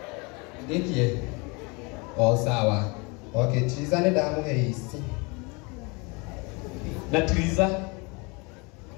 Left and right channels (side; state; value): right; quieter; 29.2 dB